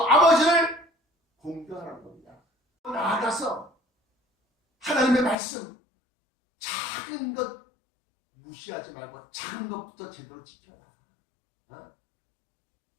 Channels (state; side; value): drops out; right; at 5.4 s